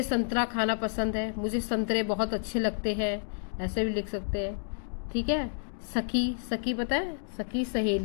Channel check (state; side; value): silent; right; digital silence